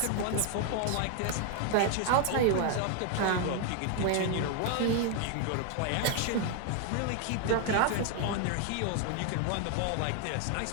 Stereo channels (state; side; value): different; both; correlation 0.00